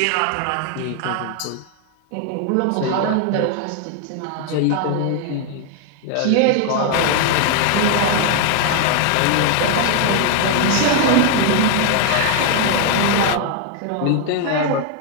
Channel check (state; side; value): different; both; correlation 0.00